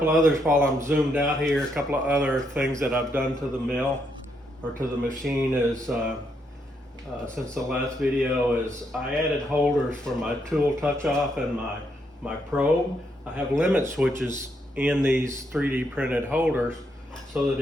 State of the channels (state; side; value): normal; both; correlation 0.77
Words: of others while I'm zoomed out here, a couple of other things that I've done to the mill or to the machine is since the last video is I added holders for my tool touch off and my probe. I have limit switches in these 3D printed holders so